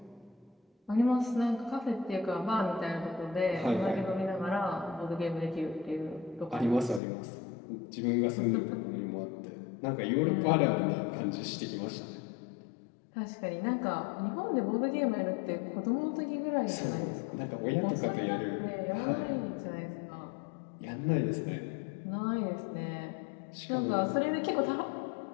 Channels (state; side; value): drops out; right; at 7.0 s